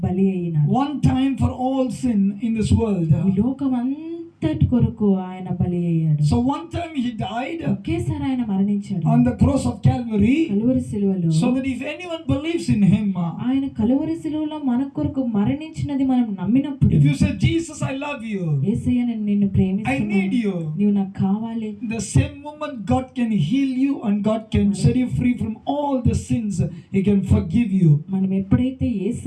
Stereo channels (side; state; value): both; identical; correlation 1.00